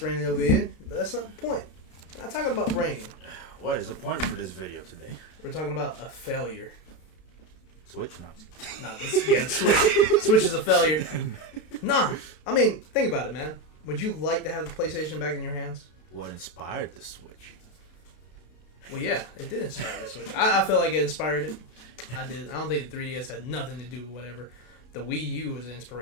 raining over here, but that's not the point. We're not talking about rain. What is the point for this video today? We're talking about a failure. Switch not. No, Switch is a failure. Nah, I mean, think about it, man. Would you like to have the PlayStation back in your hands? What inspired the Switch? Well, yeah, it did inspire the Switch. I feel like it inspired it. I did. I don't think the 3DS had nothing to do with whatever. The Wii U was the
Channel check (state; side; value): late; right; 32 ms